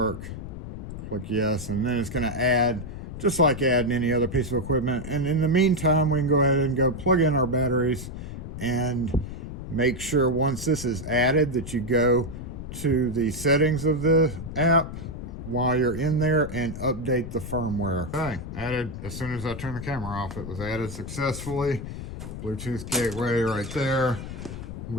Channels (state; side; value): noise; left; rumble, 9 dB below the sound